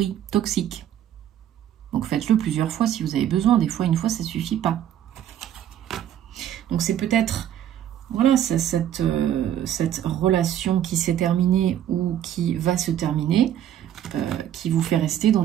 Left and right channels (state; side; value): quieter; left; 10.7 dB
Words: toxiques. Donc faites-le plusieurs fois si vous avez besoin, des fois, une fois, ça suffit pas. Donc c'est peut-être... Voilà, cette relation qui s'est terminée ou qui va se terminer, qui vous fait rester dans